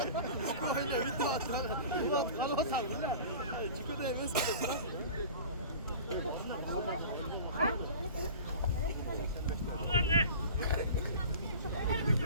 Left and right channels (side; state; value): both; inverted; correlation -0.39